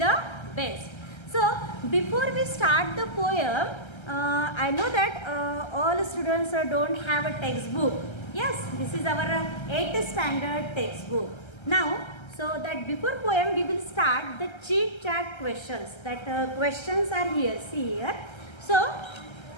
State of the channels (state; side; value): late; right; 1.3 ms